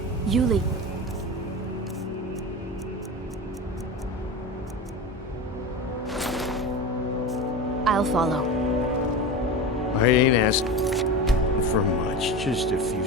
Yuli. I'll follow. I ain't asking for much, just a few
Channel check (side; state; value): both; normal; correlation 0.27